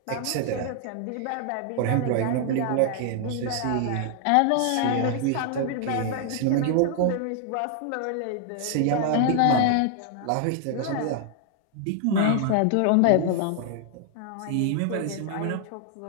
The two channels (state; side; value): different; both; correlation 0.00